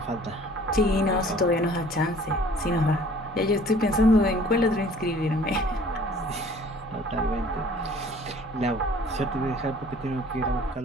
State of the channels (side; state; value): both; normal; correlation 0.52